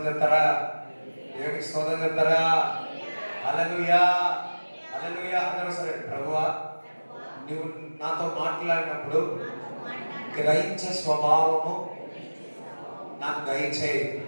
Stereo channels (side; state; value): both; inverted; correlation -1.00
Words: చెప్తారా? దేవునికి స్తోత్రం చెప్తారా? హల్లెలూయా, హల్లెలూయా. అందరూ సరే, ప్రభువా నువ్వు నాతో మాట్లాడినప్పుడు గ్రహించే స్వభావము నాకు దయచేయి,